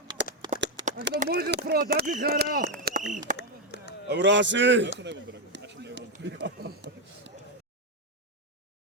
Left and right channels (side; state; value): both; normal; correlation 0.04